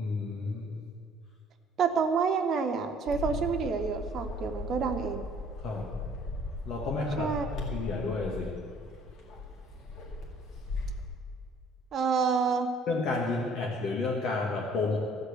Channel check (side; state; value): both; normal; correlation 0.57